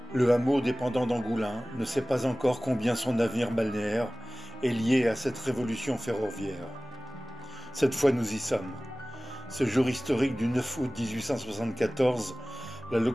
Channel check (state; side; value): normal; both; correlation 0.98